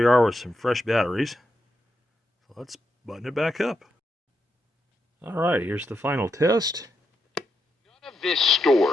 are with some fresh batteries. So let's button it back up. Alright, here's the final test. None of this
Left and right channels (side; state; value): both; normal; correlation 0.84